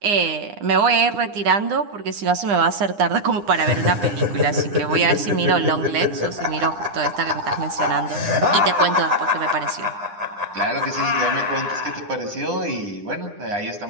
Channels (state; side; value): late; left; 9.8 ms